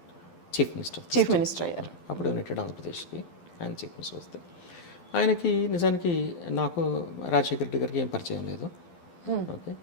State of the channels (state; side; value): late; right; 12 ms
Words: chief minister అయ్యారు. అప్పుడు యునైటెడ్ ఆంధ్రప్రదేశ్కి ఆయన చీఫ్ మినిస్టర్ వస్తే, ఆయనకి నిజానికి నాకు రాజశేఖర రెడ్డి గారికి ఏం పరిచయం లేదు. ఓకే,